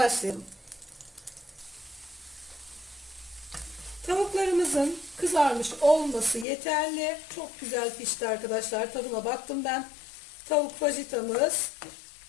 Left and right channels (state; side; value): drops out; right; at 6.5 s